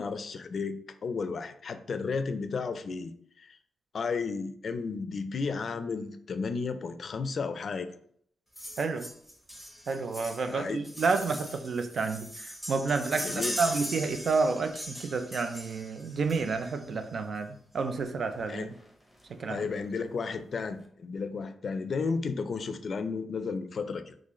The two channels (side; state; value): both; normal; correlation 0.80